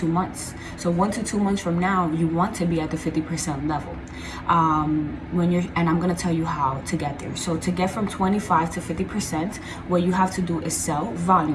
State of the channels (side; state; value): both; identical; correlation 1.00